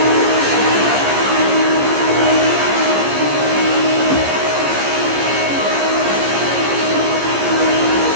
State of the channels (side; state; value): left; late; 15 ms